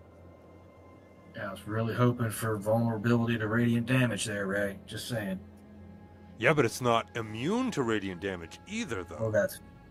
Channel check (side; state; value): both; identical; correlation 1.00